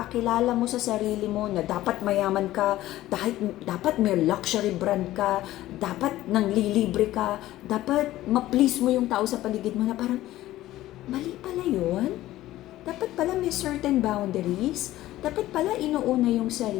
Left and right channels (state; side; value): quieter; right; 15.3 dB